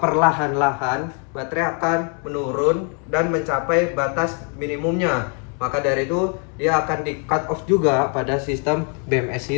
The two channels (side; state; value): right; quieter; 40.0 dB